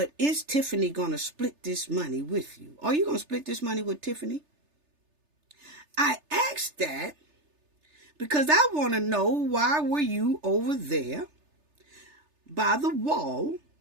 is Tiffany going to split this money with you? Are you going to split this money with Tiffany? I asked that because I want to know, why were you over there by the wall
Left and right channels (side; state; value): left; late; 3.3 ms